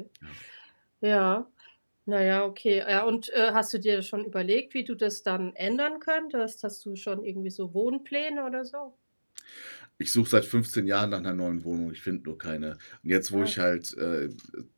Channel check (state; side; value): inverted; both; correlation -1.00